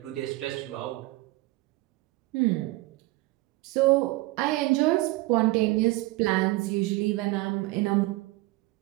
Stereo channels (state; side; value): quieter; left; 20.1 dB